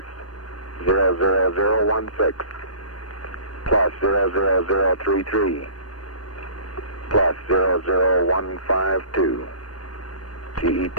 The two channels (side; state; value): right; late; 0.69 ms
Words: 00016 plus 00033 plus 00152. GET